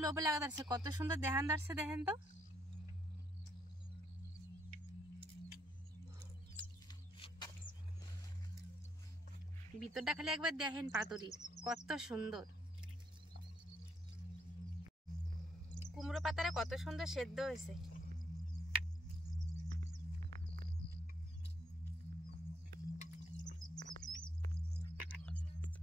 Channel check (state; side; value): normal; both; correlation 0.72